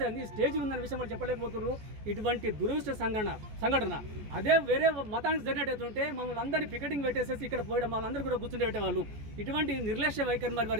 అయింది, స్టేజ్ ఉందనే విషయం వాళ్ళు చెప్పలేకపోతున్నారు. ఇటువంటి దురదృష్ట సంఘటన అదే వేరే మతానికి జరిగినట్టుంటే మమ్మల్ని అందరినీ పికెటింగ్ పెట్టేసేసి ఇక్కడ పోయడం, మమ్మల్ని అందరూ కూడా కూర్చుని పెట్టేవాళ్ళు. ఇటువంటి నిర్లక్ష్య వైఖరి మరి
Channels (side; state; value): left; late; 14 ms